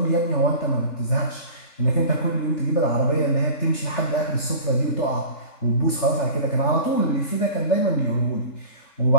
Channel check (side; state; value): right; late; 3.4 ms